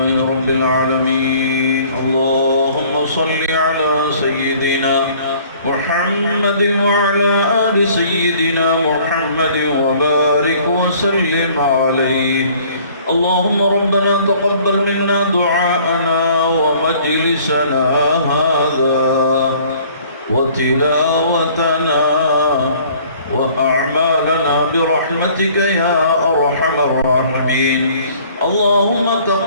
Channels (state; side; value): inverted; both; correlation -0.54